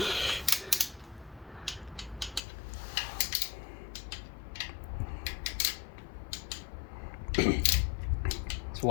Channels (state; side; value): drops out; right; at 2.4 s